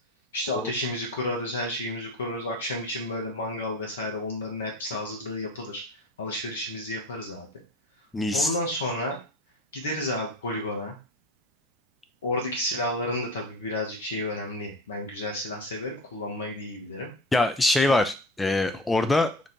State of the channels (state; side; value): normal; both; correlation 0.31